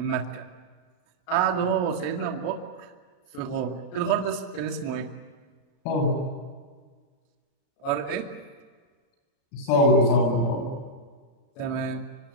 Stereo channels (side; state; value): right; late; 34 ms